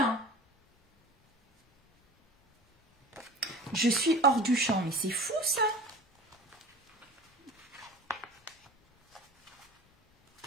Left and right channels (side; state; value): both; normal; correlation 0.39